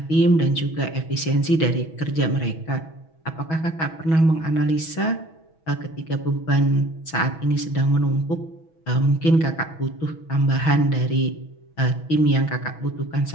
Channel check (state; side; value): late; right; 6.2 ms